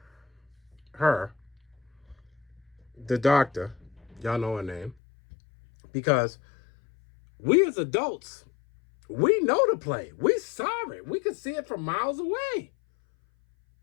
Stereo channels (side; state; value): right; drops out; at 5.0 s